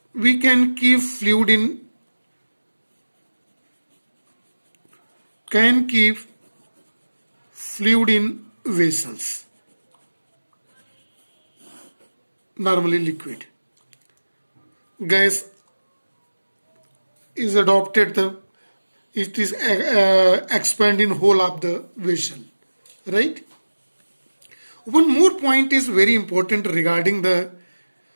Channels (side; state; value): both; inverted; correlation -1.00